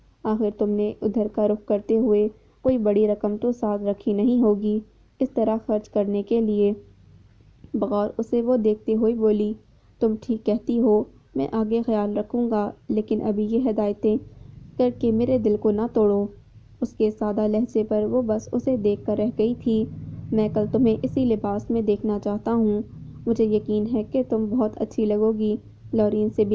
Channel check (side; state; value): both; identical; correlation 1.00